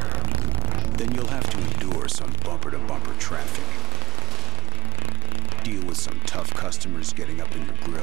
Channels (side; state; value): left; quieter; 11.7 dB